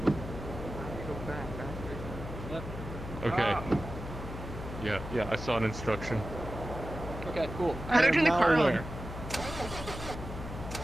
Okay. Yeah, I saw an instruction. Okay, cool. How do I turn the now car on? aware.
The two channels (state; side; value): noise; left; hum, 9 dB below the sound